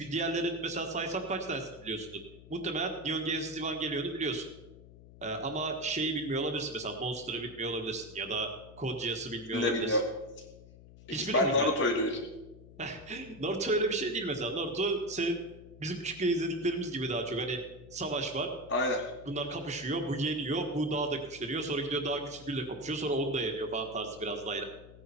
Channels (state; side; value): noise; left; hum, 19 dB below the sound